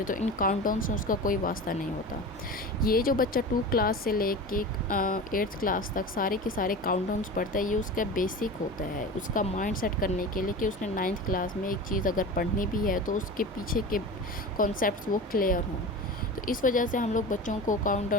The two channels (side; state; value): both; normal; correlation 0.31